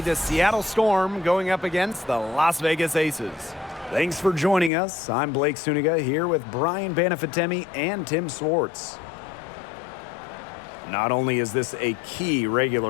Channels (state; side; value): drops out; right; at 4.7 s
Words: the Seattle Storm going up against the Las Vegas Aces. Thanks for joining us. I'm Blake Suniga here with Brian Banafitemi and Tim Swartz. Not only is this a key